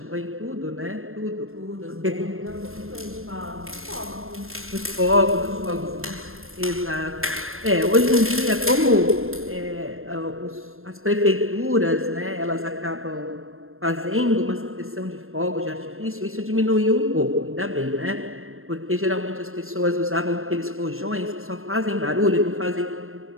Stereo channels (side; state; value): left; late; 0.61 ms